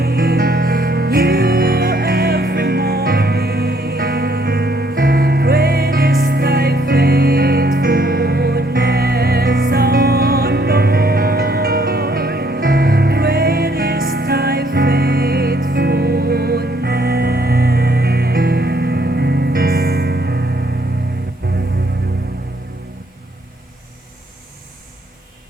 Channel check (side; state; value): both; normal; correlation 0.67